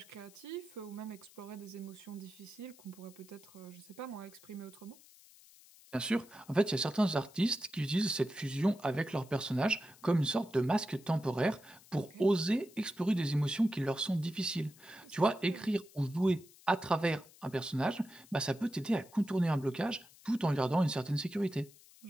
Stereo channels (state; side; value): noise; left; hiss, 24 dB below the sound